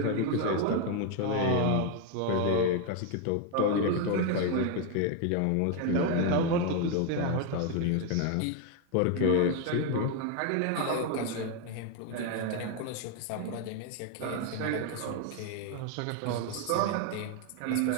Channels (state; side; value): different; both; correlation 0.01